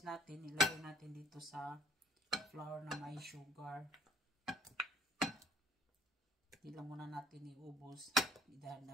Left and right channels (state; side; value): normal; both; correlation 0.57